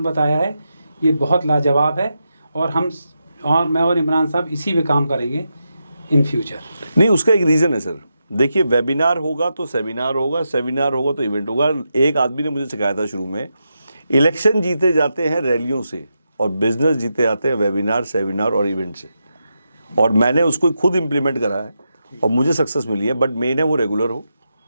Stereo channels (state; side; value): inverted; both; correlation -0.86